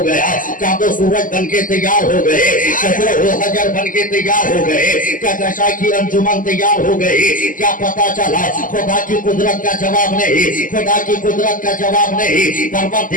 گیا، چاند و سورج بن کے تیار ہو گئے، شجر و حجر بن کے تیار ہو گئے، کہکشاں کی انجمن تیار ہو گئی۔ کیا پتا چلا؟ خدا کی قدرت کا جواب نہیں، خدا کی قدرت کا جواب نہیں،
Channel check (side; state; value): right; late; 0.39 ms